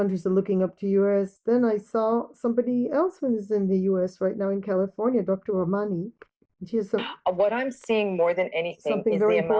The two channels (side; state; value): both; identical; correlation 1.00